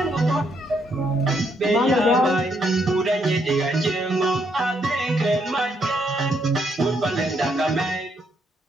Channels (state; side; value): normal; both; correlation 0.74